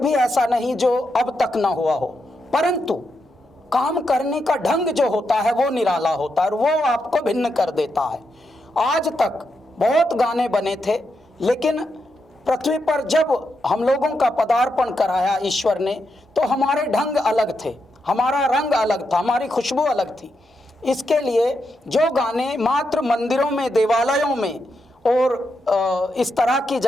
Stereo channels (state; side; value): normal; both; correlation 0.84